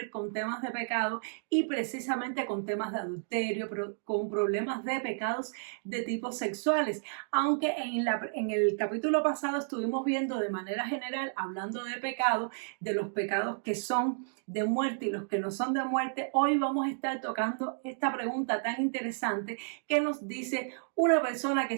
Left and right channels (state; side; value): silent; left; digital silence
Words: con temas de pecado y precisamente con temas de adulterio, con problemas de pecados de tipo sexuales. Aunque en el capítulo pasado estuvimos viendo de manera general, hablando de pecado, de los pecados que son de muerte y los que no son de muerte, hoy vamos a estar tocando esta pregunta tan interesante que nos dice una persona